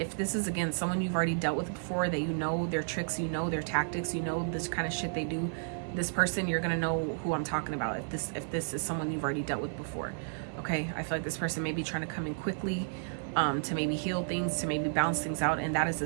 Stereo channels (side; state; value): left; silent; 56 dB below the other